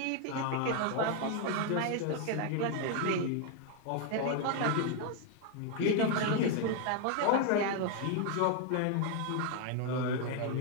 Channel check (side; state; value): both; different; correlation 0.00